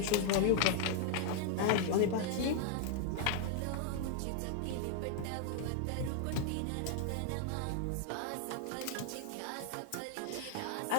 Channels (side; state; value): both; different; correlation 0.00